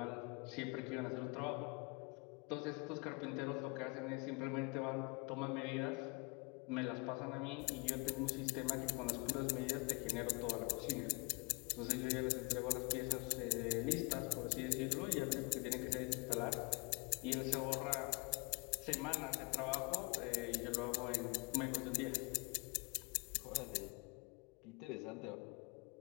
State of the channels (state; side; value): quieter; right; 29.8 dB